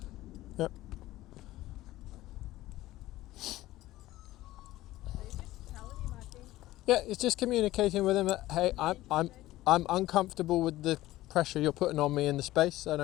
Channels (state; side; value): quieter; right; 16.3 dB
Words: Yep. So you're just telling him, I think. Yeah. It's just communicating with him that, hey, I'm uncomfortable with the pressure you're putting on me in the space. I